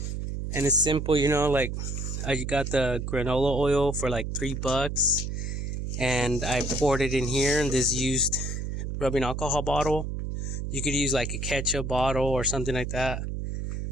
And it's simple, you know, like I got the granola oil for like $3, and I poured it in here in this used rubbing alcohol bottle. You could use like a ketchup bottle or something like that.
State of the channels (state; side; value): noise; right; hum, 4 dB below the sound